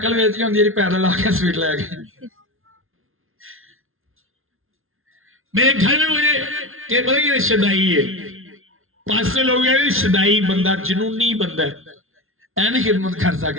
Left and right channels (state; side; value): late; left; 0.61 ms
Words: बेच के होंगी पैदल आके स्वीट ले गए। मेरे घर में मुझे पता कि शदाई है, पास लोग शदाई बंदा, जनूनी बंदा है, ऐ नहीं खिदमत कर